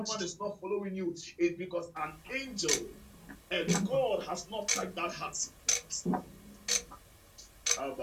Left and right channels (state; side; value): identical; both; correlation 1.00